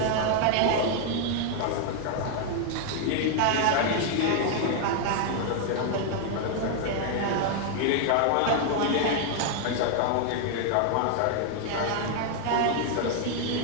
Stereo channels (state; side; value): different; both; correlation 0.00